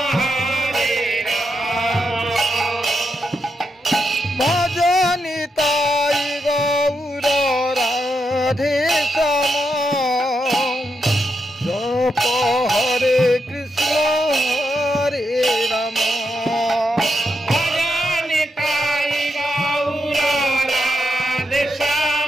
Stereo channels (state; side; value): normal; both; correlation 0.83